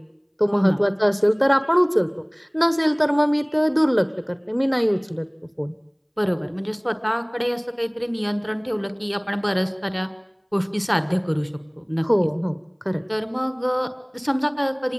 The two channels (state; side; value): identical; both; correlation 1.00